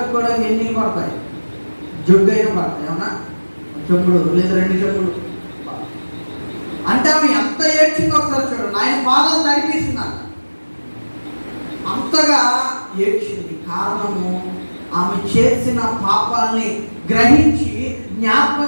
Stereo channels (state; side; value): inverted; both; correlation -1.00